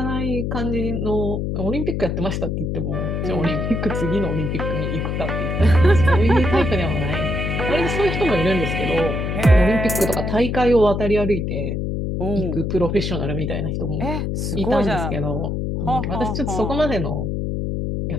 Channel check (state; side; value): noise; left; hum, 1 dB below the sound